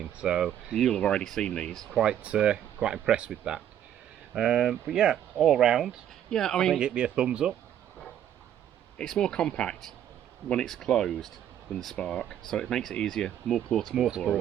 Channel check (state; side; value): quieter; left; 10.5 dB